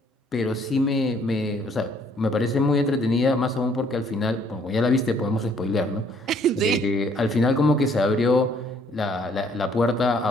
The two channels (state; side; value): normal; both; correlation 0.63